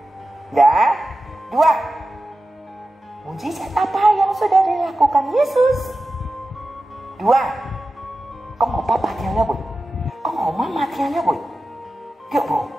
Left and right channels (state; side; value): normal; both; correlation 0.94